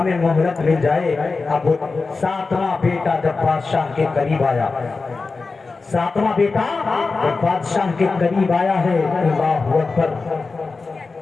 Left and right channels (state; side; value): quieter; right; 4.1 dB